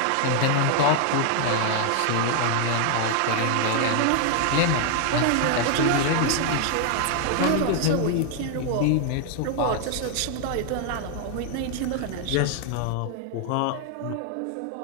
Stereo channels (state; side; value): different; both; correlation 0.00